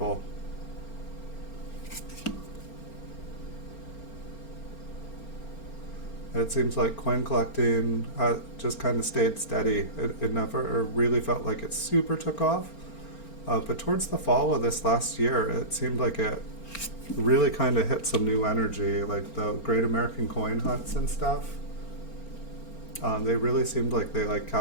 It seems like coin collecting just kind of stayed steady. It never really felt like it super took off. But towards the fall of this last year, it seemed like it really kind of hit some new energy, like the Great American Coin Hunts and stuff. They really seemed like they like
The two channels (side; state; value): right; late; 4.4 ms